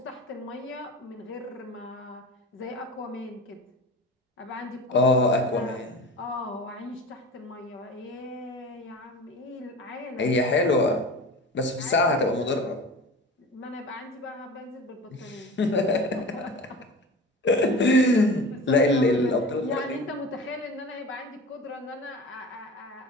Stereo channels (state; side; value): normal; both; correlation 0.34